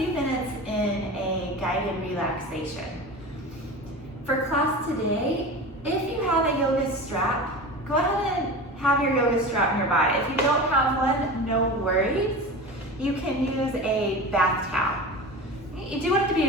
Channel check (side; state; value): both; normal; correlation 0.31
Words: minutes in a guided relaxation. For class today, if you have a yoga strap, go ahead and have your yoga strap nearby. If you don't have one, no worries. You can use a bath towel. You do